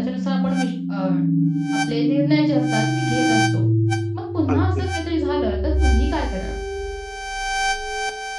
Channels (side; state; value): both; identical; correlation 1.00